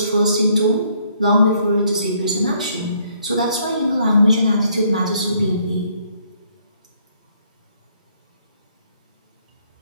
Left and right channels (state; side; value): inverted; both; correlation -0.67